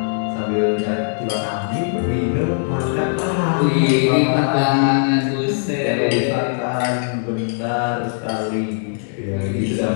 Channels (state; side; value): silent; right; digital silence